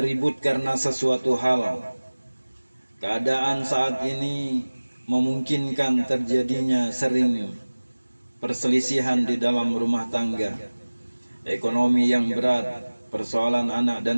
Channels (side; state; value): both; inverted; correlation -1.00